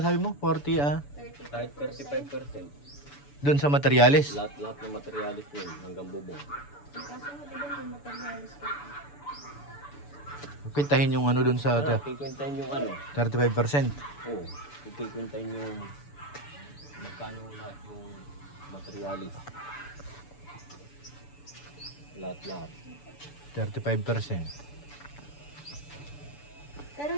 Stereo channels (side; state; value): right; late; 6.9 ms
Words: mo? 40, kahit 35%. doon sa materialis. Lahat ng materialis yun hanggang bubong. Kaso di ba may materialis ka? Pintahin yung ano doon sa Kikwentahin yung ano. 35%. Oo. Kikwentahin yung magkano lahat yung materialis. Lahat. 35%. Pero